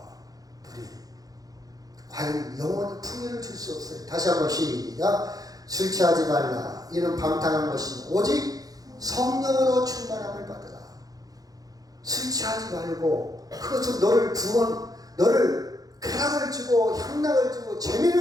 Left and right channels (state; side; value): late; left; 0.18 ms